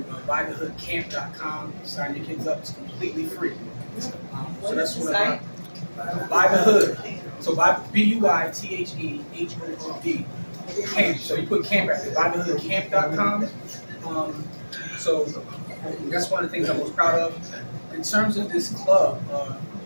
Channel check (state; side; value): inverted; both; correlation -1.00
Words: buythehoodcamp.com, sign your kids up. It's completely free. So that's what I'm Buy the Hood. So buy BUITHEHOOD camp. So you put camp at it. Buythehoodcamp.com. So that's one of the things I'm most proud of. In terms of this club,